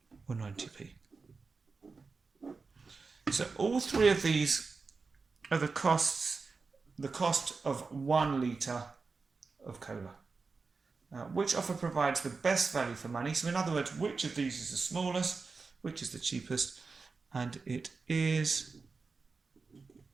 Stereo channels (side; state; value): left; quieter; 4.4 dB